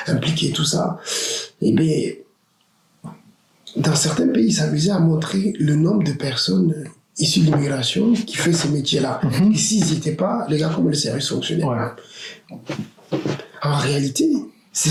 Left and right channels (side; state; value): both; identical; correlation 1.00